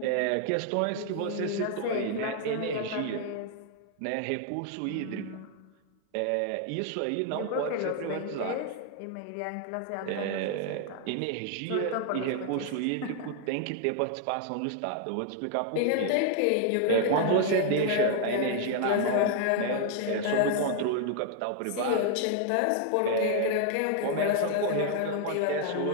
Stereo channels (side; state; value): both; different; correlation 0.00